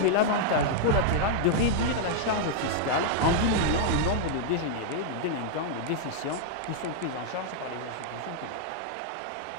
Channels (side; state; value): both; different; correlation -0.01